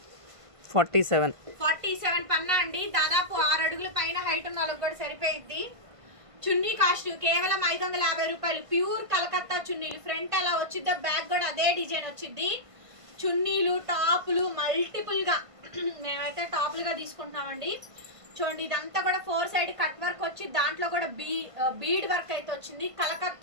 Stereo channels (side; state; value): left; late; 1.5 ms